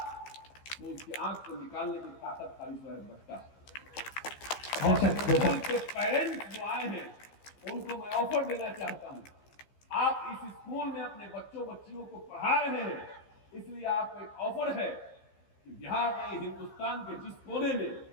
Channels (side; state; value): right; late; 15 ms